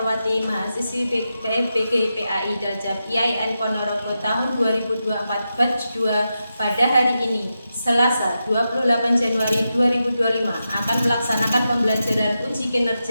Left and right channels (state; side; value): inverted; both; correlation -0.89